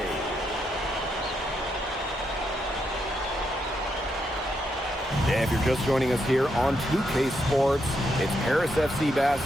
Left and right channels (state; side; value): normal; both; correlation 0.80